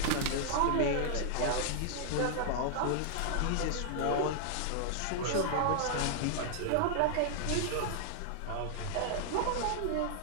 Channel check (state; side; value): different; both; correlation -0.01